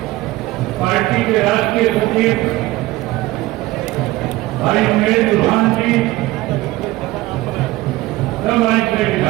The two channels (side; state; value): left; quieter; 18.2 dB